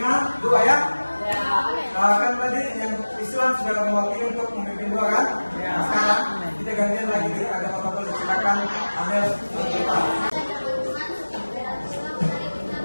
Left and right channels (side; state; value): both; inverted; correlation -1.00